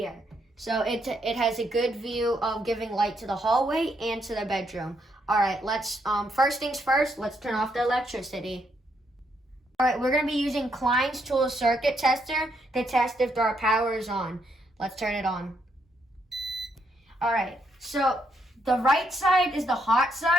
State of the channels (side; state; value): both; normal; correlation 0.76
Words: So it has a good view of giving light to the hallway and to the bedroom. All right, let's, first things first, let's turn off the electricity. All right, we're gonna be using Klein's tool circuit tester to test if our power is on. Let's turn it on. All right, so the right side is the hot